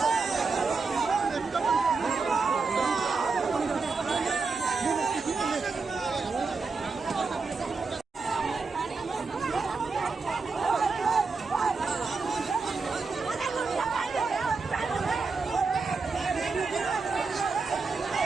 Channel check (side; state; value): left; quieter; 4.4 dB